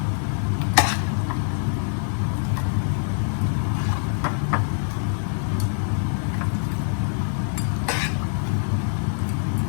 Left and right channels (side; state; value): right; silent; digital silence